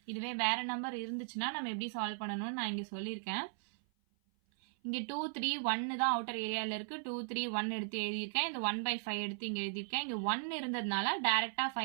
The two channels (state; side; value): silent; left; 53 dB below the other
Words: இதுவே வேற நம்பர் இருந்துச்சுன்னா நம்ம எப்படி சால்வ் பண்ணணும்னு நான் இங்க சொல்லியிருக்கேன். இங்க 2 3 1 தான் அவுட்டர் ஏரியால இருக்கு. 2 3 1 எடுத்து எழுதியிருக்கேன். இந்த 1/5 எடுத்து இங்க எழுதியிருக்கேன். இங்க 1 இருந்ததுனால டைரக்டா